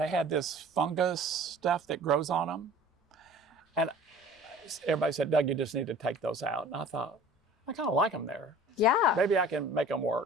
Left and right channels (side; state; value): both; normal; correlation 0.46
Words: had this fungus stuff that grows on them. And everybody said, Doug, you just need to take those out. And I thought, I kind of like them there. Yeah. Maybe I can make them